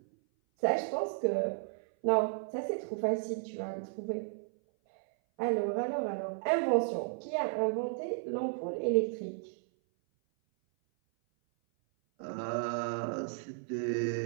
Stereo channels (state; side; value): silent; left; 55 dB below the other